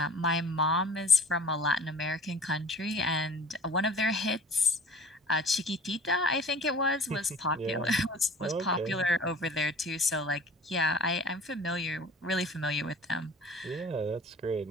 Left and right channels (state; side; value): normal; both; correlation 0.44